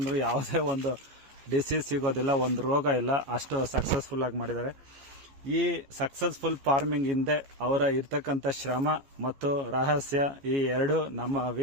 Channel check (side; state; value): left; late; 14 ms